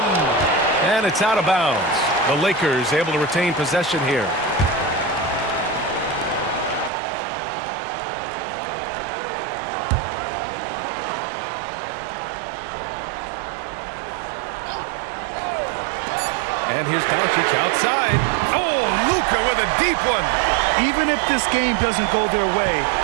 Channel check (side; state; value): left; drops out; at 6.9 s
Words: And it's out of bounds. The Lakers able to retain possession here. And here's Doncic outside. Oh, Luka with a deep one. Even if this game doesn't go their way,